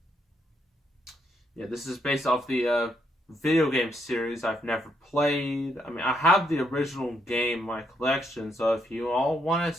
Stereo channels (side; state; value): both; normal; correlation 0.76